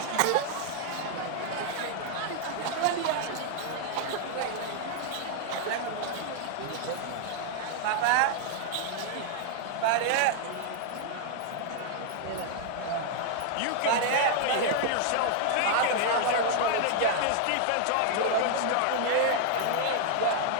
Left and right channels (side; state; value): both; different; correlation -0.01